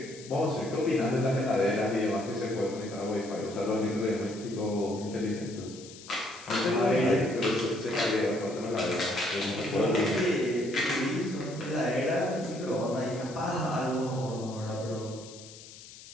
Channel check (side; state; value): left; noise; hiss, 17 dB below the sound